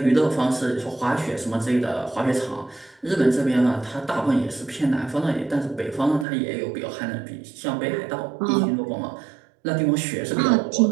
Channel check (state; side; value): drops out; left; at 6.2 s